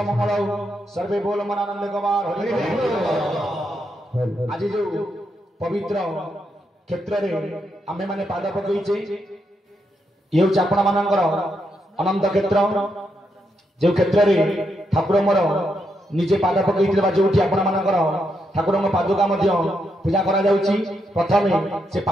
मंगल सर्वे बोल मनानंद गवार आज जो पवित्र क्षेत्र में आमे माने पाद पकईचे ये हूँ आपण मानकर अनंत क्षेत्र जो क्षेत्र में ठाकुर मोर निजे पाद पकई जो आपण मानकर ठाकुर पादुका पूजा करा जाउची प्रथम से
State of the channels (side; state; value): both; normal; correlation 0.81